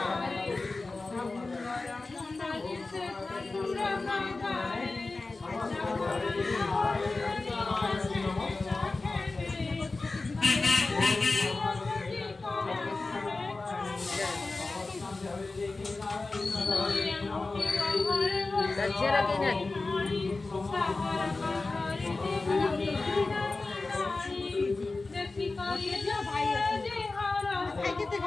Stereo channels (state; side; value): quieter; right; 3.5 dB